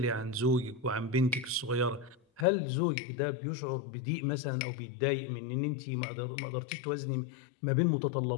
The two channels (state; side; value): drops out; right; at 2.5 s